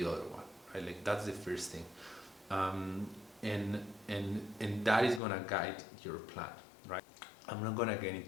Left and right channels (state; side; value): drops out; right; at 5.2 s